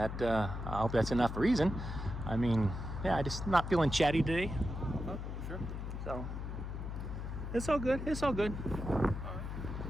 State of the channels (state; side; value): noise; left; hum, 6 dB below the sound